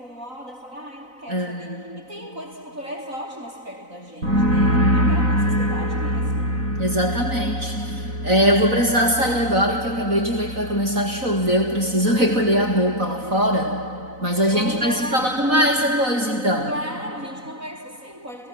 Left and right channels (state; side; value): late; left; 4.0 ms